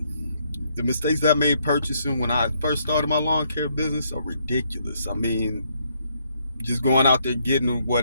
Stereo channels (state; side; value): inverted; both; correlation -0.72